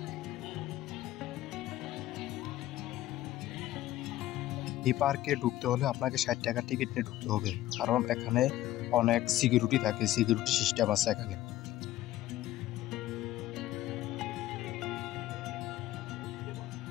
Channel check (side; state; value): right; quieter; 14.7 dB